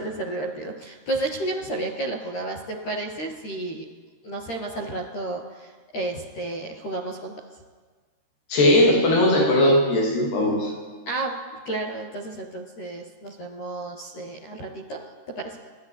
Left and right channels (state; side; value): late; right; 13 ms